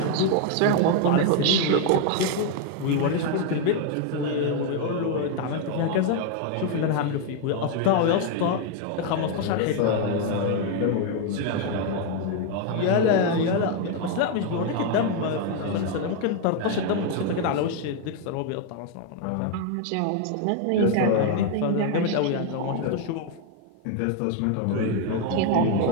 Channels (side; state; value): both; different; correlation 0.01